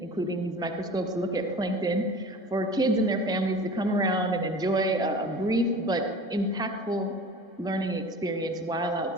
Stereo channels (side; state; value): both; normal; correlation 0.39